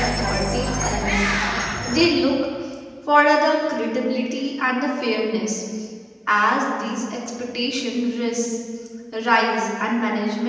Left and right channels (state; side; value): identical; both; correlation 1.00